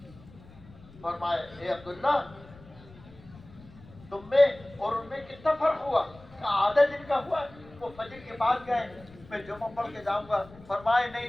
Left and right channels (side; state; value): left; noise; rumble, 21 dB below the sound